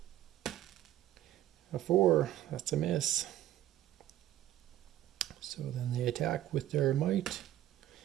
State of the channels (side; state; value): left; quieter; 13.2 dB